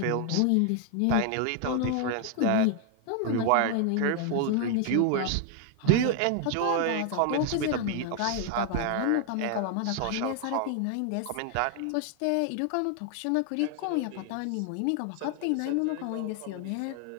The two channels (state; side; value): different; both; correlation 0.00